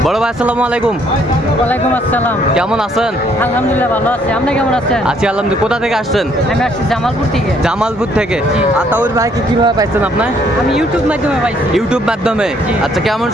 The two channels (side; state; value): both; normal; correlation 0.66